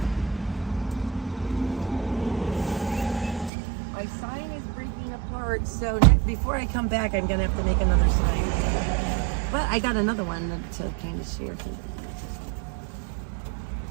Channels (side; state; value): left; drops out; at 3.5 s